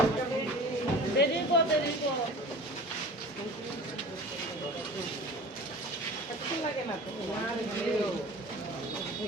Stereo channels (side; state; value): both; normal; correlation 0.39